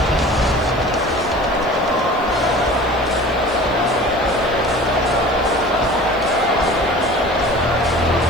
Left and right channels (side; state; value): right; noise; hiss, 29 dB below the sound